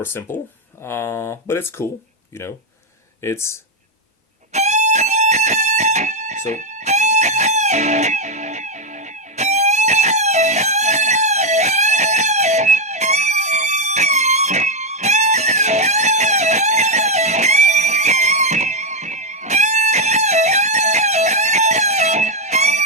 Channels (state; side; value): normal; both; correlation 0.03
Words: simple, but it's cool. It's so.